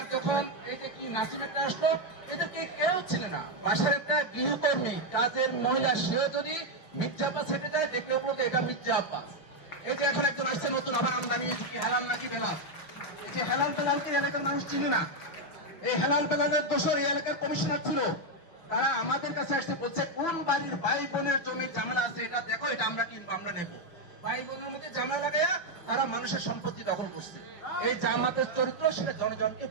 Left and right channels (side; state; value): right; late; 6.1 ms